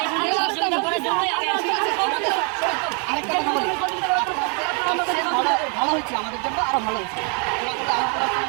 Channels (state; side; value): quieter; left; 38.1 dB